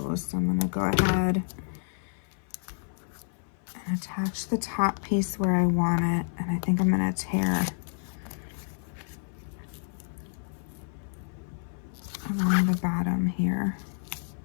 So I'm gonna go ahead and attach the top piece where I want it. And I think I'm gonna tear along the bottom here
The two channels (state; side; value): silent; right; 57 dB below the other